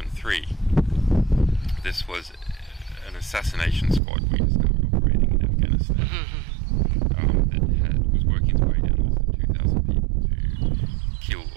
This was an assassination squad we discovered operating in Afghanistan that was working its way down less than 2,000 people to kill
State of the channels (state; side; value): drops out; left; at 4.0 s